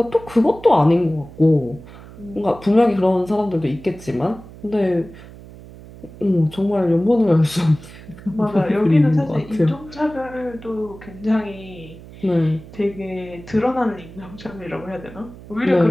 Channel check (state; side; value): noise; right; hum, 18 dB below the sound